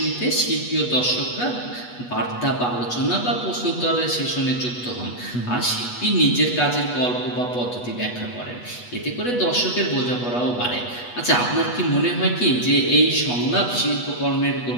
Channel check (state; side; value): late; right; 8.2 ms